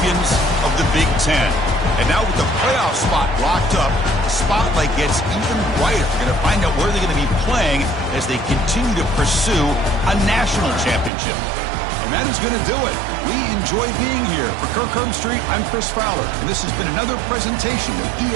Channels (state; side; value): drops out; left; at 11.1 s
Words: of the Big Ten. And now with the playoff spot locked up, the spotlight gets even brighter. We're going to find out where they're going to be playing as they continue to pursue a national championship. And that is going to do it. We enjoy being here. For Kirk Herbstreit, I'm Chris Fowler, and this has been another presentation of